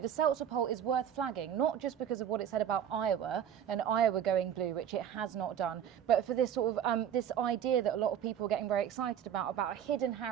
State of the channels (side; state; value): left; quieter; 9.3 dB